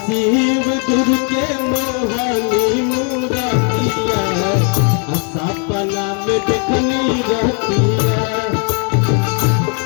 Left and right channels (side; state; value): right; quieter; 39.6 dB